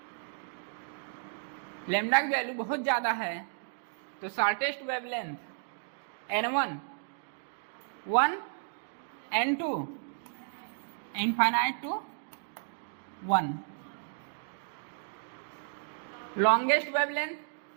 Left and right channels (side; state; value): left; silent; digital silence